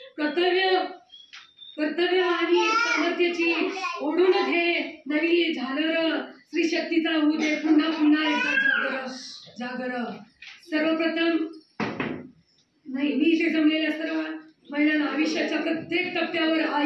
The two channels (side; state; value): both; identical; correlation 1.00